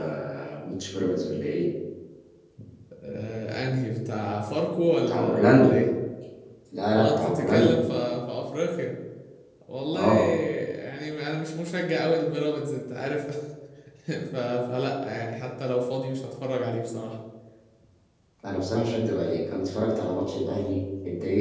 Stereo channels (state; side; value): identical; both; correlation 1.00